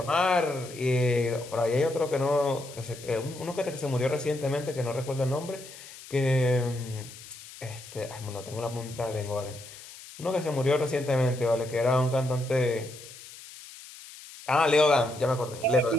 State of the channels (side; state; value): left; noise; hiss, 16 dB below the sound